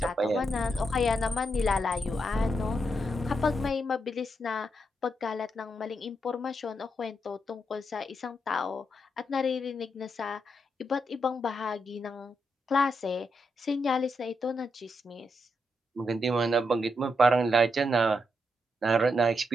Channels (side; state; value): both; normal; correlation 0.82